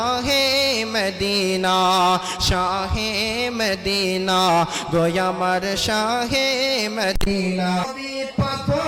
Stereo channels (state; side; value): identical; both; correlation 1.00